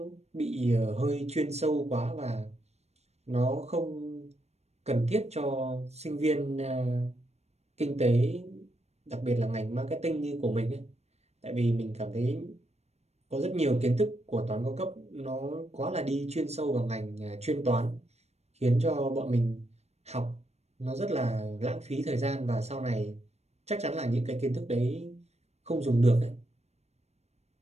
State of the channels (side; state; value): left; late; 0.31 ms